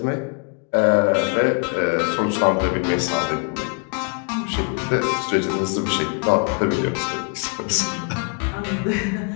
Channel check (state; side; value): quieter; right; 39.4 dB